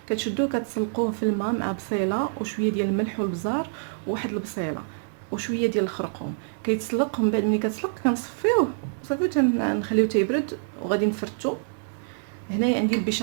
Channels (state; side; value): silent; left; digital silence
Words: كتشدوه كتسلقوه في الماء مع بصيله وشويه ديال الملح والبزار وواحد البصيله وشويه ديال الخرقوم. كيتسلق، من بعد ملي كتسلق كنصفيوه صافي تنخليوه تيبرد وغادي نفرتو. هنايا عندي